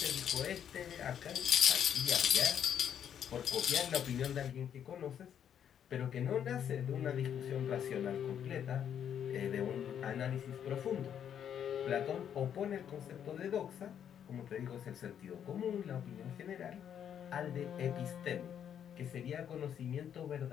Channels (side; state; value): right; quieter; 9.0 dB